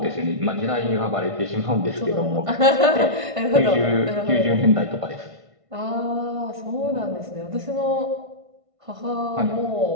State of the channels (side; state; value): left; late; 1.5 ms